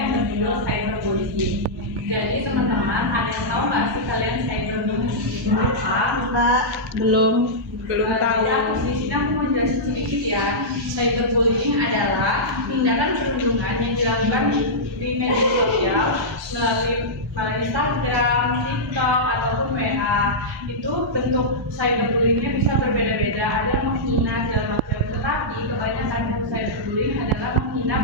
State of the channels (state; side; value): normal; both; correlation -0.11